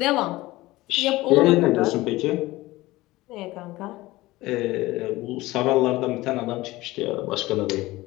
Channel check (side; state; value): right; quieter; 18.9 dB